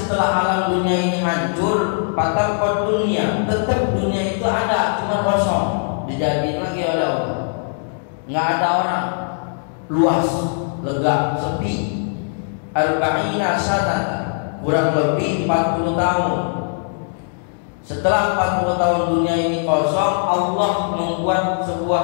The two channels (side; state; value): right; silent; digital silence